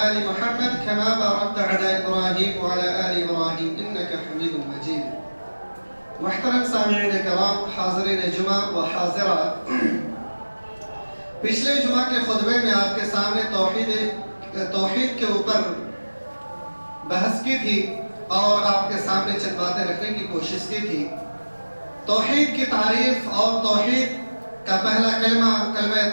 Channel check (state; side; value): inverted; both; correlation -1.00